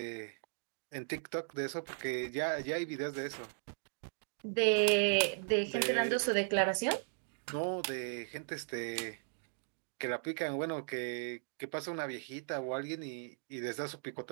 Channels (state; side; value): silent; left; digital silence